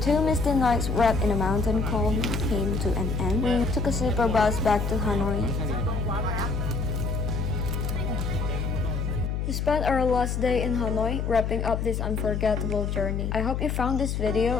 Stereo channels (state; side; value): noise; left; hum, 1 dB below the sound